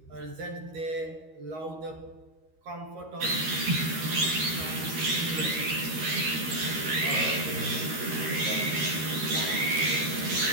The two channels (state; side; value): late; left; 13 ms